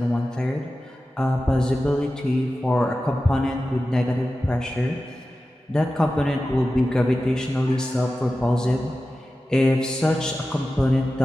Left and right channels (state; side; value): normal; both; correlation 0.94